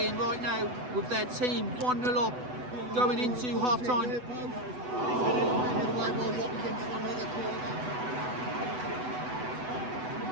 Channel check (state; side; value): late; left; 8.0 ms